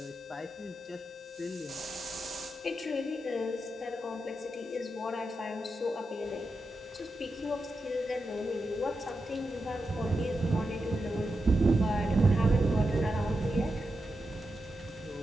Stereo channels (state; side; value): normal; both; correlation 0.88